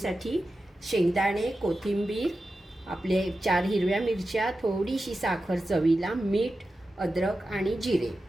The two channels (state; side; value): normal; both; correlation 0.92